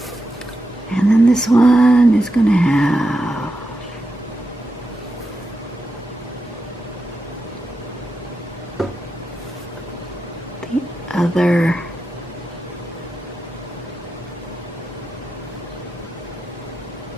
And then this one is going to have the other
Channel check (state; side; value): normal; both; correlation 0.88